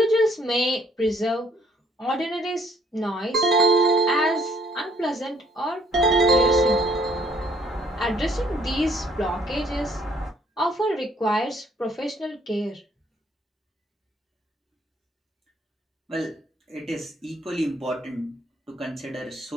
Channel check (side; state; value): both; normal; correlation 0.64